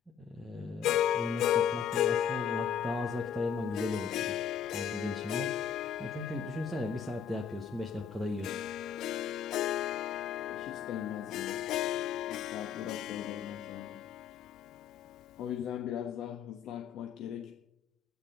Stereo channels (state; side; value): quieter; right; 7.8 dB